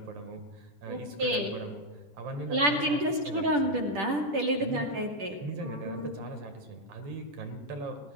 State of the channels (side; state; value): left; late; 10 ms